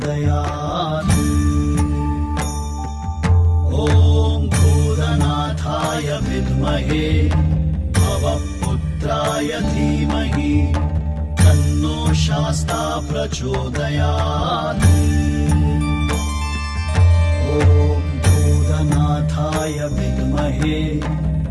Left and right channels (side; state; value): both; identical; correlation 1.00